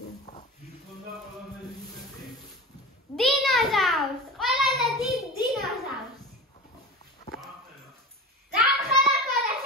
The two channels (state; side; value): normal; both; correlation 0.30